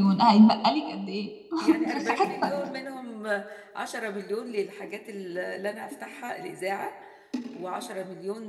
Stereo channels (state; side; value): identical; both; correlation 1.00